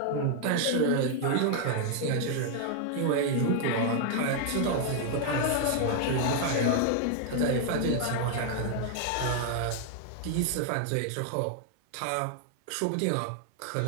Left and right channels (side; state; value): both; different; correlation 0.00